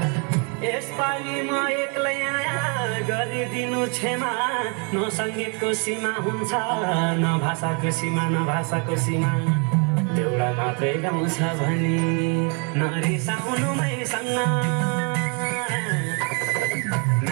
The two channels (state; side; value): quieter; left; 36.3 dB